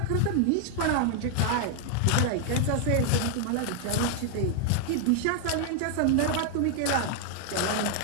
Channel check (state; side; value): different; both; correlation 0.00